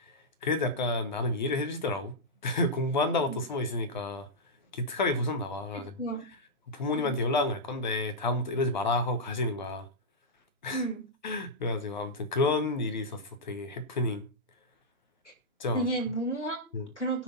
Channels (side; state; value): both; normal; correlation -0.08